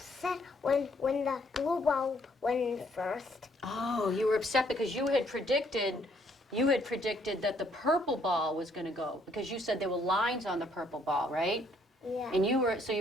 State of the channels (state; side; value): normal; both; correlation 0.67